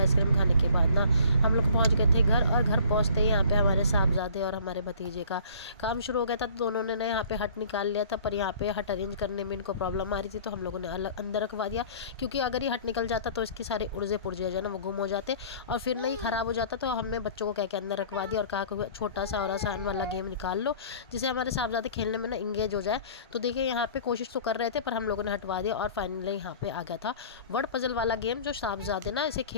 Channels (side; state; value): both; inverted; correlation -0.49